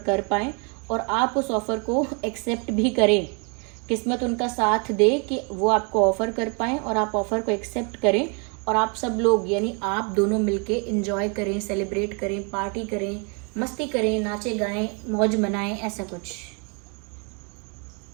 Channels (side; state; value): left; quieter; 35.9 dB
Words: कर पाएँ और आप उस ऑफ़र को एक्सेप्ट भी करें। किस्मत उनका साथ दे कि वो आपको ऑफ़र कर पाएँ और आप ऑफ़र को एक्सेप्ट करें और आप सब लोग यानी आप दोनों मिलके एंजॉय करें, सेलिब्रेट करें, पार्टी करें, मस्ती करें, नाचे गाएं, मौज मनाएं, ऐसा कुछ।